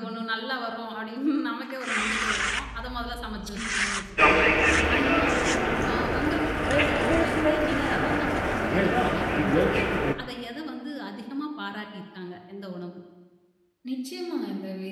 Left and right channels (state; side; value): identical; both; correlation 1.00